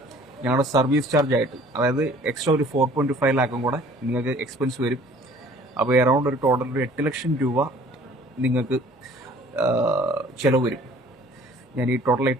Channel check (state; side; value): normal; both; correlation 0.52